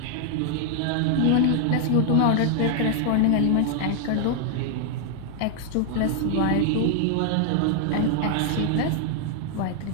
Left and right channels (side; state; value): both; different; correlation 0.00